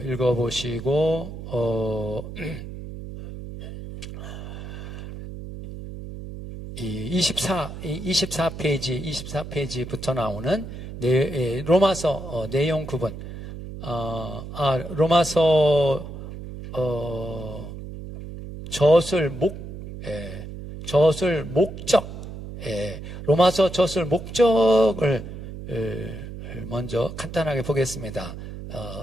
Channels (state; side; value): noise; right; hum, 10 dB below the sound